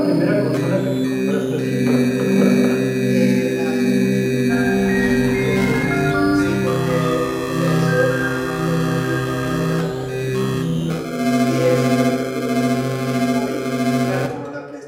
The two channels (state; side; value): identical; both; correlation 1.00